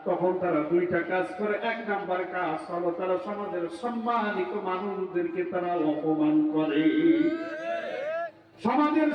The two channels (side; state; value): both; identical; correlation 1.00